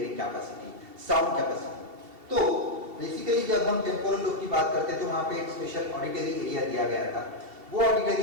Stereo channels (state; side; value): late; left; 2.8 ms